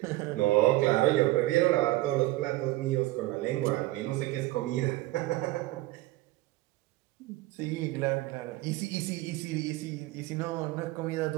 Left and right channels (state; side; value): quieter; left; 18.5 dB